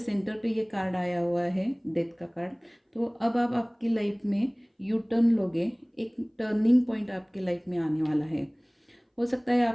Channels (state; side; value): identical; both; correlation 1.00